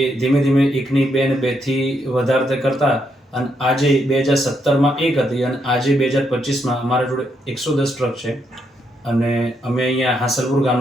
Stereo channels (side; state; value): both; normal; correlation 0.78